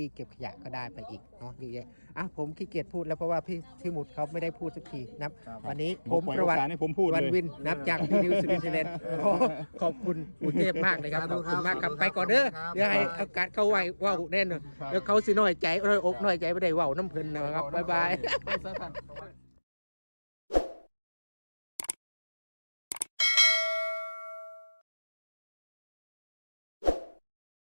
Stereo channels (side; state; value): both; inverted; correlation -1.00